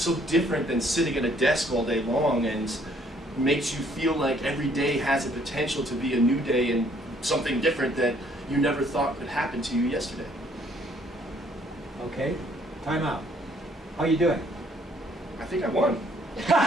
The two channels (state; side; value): normal; both; correlation 0.64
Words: different than sitting at a desk all day long and makes you feel like every day has a potential to be a new day and something different that you never thought could happen to you yesterday. Okay, time out. How you doing? I think I won.